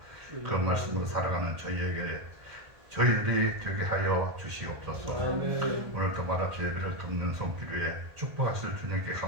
그 말씀으로 살아가는 저희들이 되게 하여 주시옵소서. 오늘도 말합시 예배를 돕는 손길 위에 축복하실 주님께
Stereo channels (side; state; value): left; late; 1.4 ms